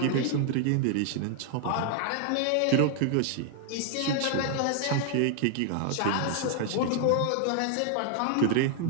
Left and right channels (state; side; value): different; both; correlation 0.00